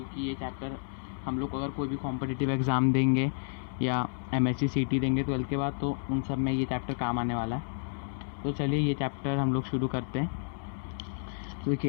ये चैप्टर हम लोग अगर कोई भी कॉम्पिटिटिव एग्ज़ाम देंगे या MSc CT देंगे 12th के बाद, तो उन सब में ये चैप्टर काम आने वाला है। तो चलिए ये चैप्टर हम लोग शुरू करते हैं। तो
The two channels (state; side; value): silent; right; digital silence